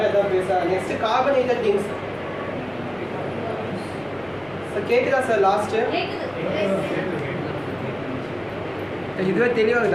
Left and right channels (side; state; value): left; noise; rumble, 26 dB below the sound